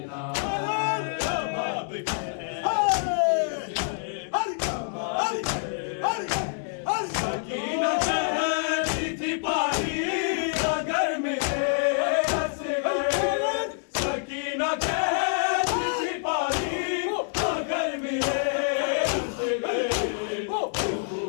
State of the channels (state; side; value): silent; right; 60 dB below the other